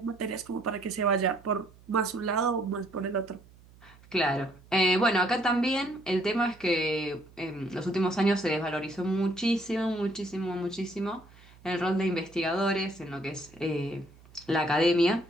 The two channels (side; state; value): right; noise; hum, 25 dB below the sound